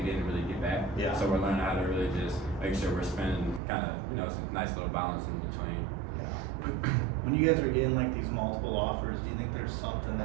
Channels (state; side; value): drops out; left; at 3.6 s